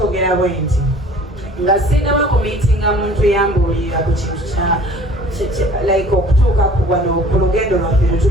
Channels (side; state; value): both; normal; correlation 0.50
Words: bwe nti nga sinaba ku meetinga muntu yambuulira ku kintu kya like okutuuka ku wano ku lugendo lwaffe lwe